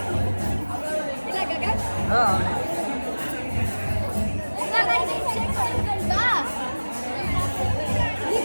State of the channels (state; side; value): inverted; both; correlation -1.00